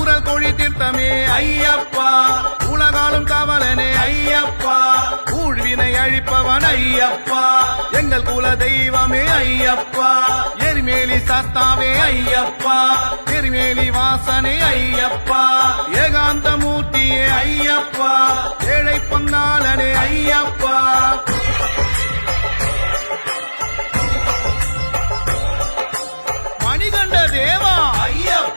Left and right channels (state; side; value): inverted; both; correlation -1.00